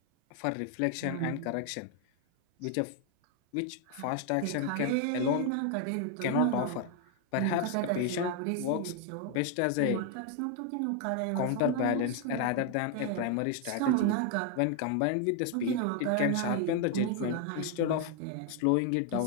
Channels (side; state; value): both; different; correlation 0.01